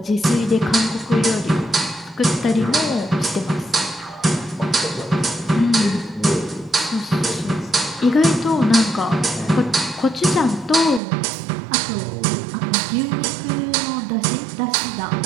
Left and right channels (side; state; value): left; drops out; at 11.0 s